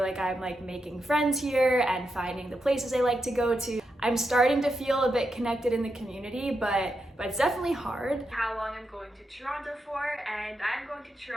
like I'm like making friends here and finding the places I like to go to. I'm starting to feel a bit connected in the community, but it's definitely hard. How long I'm going to Toronto for, and I'm going to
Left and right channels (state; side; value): normal; both; correlation 0.85